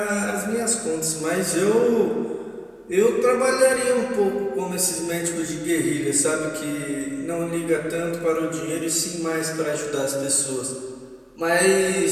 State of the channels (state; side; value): identical; both; correlation 1.00